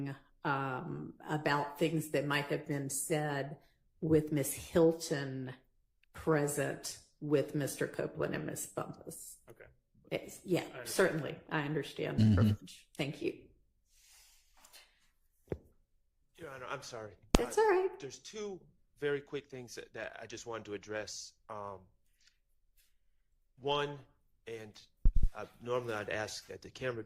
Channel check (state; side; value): identical; both; correlation 1.00